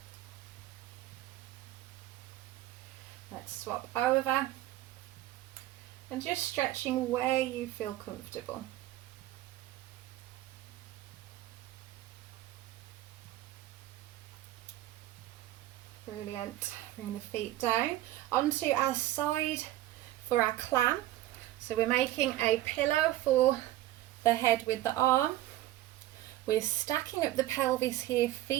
Let's swap over and just stretching where you feel comfortable. Brilliant. Bring the feet down onto our side for our clam. So we're making a pillow for the head with the arm. We're stacking up the pelvis here,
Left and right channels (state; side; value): quieter; left; 15.2 dB